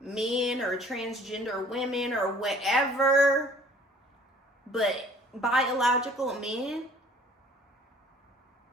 or transgender women or whatever, but biological men.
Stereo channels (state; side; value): normal; both; correlation 0.53